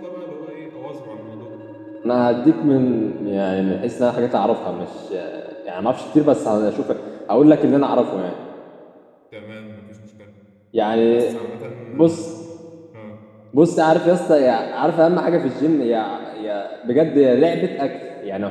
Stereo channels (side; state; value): both; identical; correlation 1.00